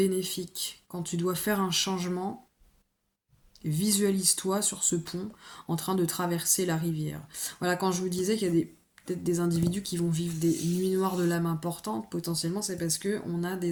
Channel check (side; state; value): both; identical; correlation 1.00